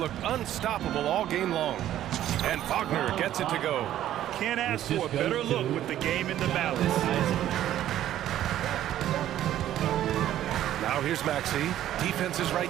unstoppable all game long. And Wagner gets it to go. Can't ask for a better look with the game in the balance. Now here's Maxey. Defense is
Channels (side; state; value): left; quieter; 12.3 dB